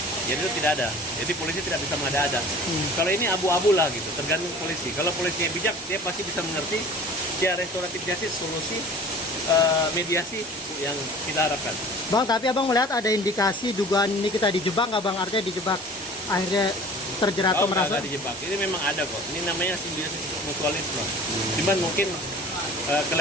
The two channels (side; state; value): both; normal; correlation 0.44